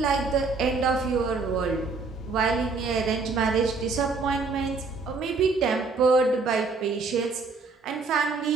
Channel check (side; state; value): left; quieter; 4.2 dB